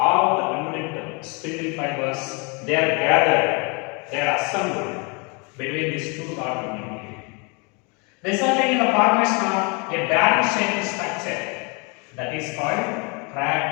the remnant spindle fibers, they are gathered, they are assembled between these two daughter nuclei, resulting in the formation of a barrel-shaped structure that is called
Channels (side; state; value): right; quieter; 31.9 dB